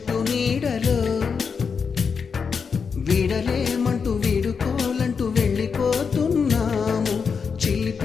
నీడలో. వీడలేమంటూ వీడుకోలంటూ వెళ్ళిపోతున్నాము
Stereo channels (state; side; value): quieter; right; 5.8 dB